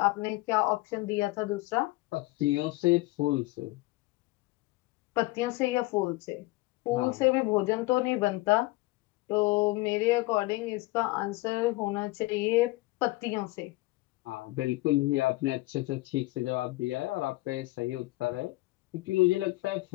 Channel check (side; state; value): right; quieter; 20.7 dB